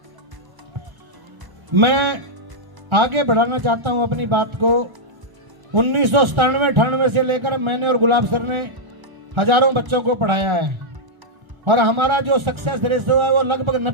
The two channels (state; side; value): late; left; 1.3 ms